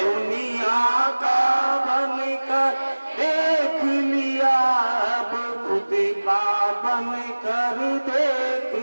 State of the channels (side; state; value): both; inverted; correlation -1.00